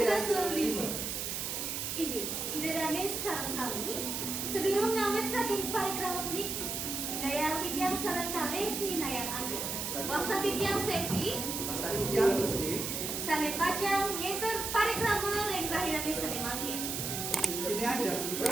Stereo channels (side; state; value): right; noise; hiss, 3 dB below the sound